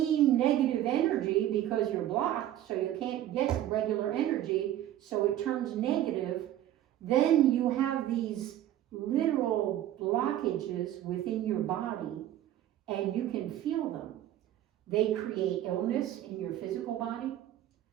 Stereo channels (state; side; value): quieter; left; 12.6 dB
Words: negative energy, because you're blocked, so you can't get regular energy, so it turns negative, then you have these literal blockages within your body. And you can feel them. They create illness in your physical body.